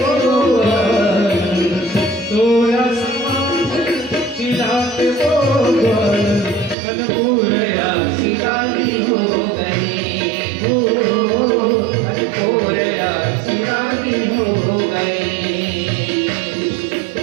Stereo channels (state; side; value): drops out; left; at 6.8 s